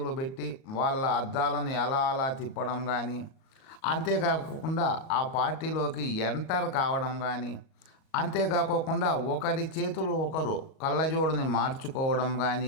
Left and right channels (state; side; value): late; right; 38 ms